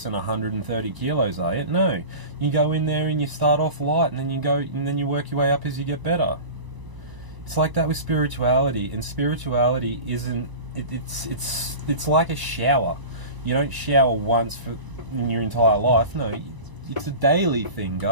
130 kilos, are you? No, you go in there and you start off light, and then you work your way up as you get better. It's like that with spirituality, and spirituality isn't it's like a shower. You don't shower once in your entire life. No, it's a daily thing,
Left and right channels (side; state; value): left; late; 1.0 ms